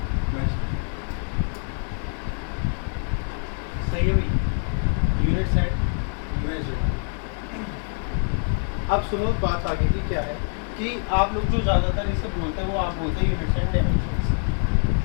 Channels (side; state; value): right; silent; 56 dB below the other